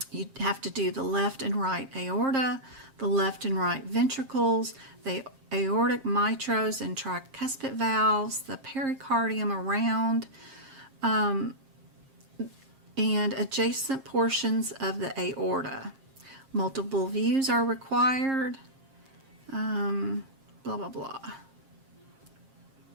you have to do the left and right aorta, the left and right ventricles, the aortic mitros and tricuspid valves, the pericardium around, and adjacent portions of the aorta. Multiple views are required, blah, blah, blah.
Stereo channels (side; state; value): left; late; 7.5 ms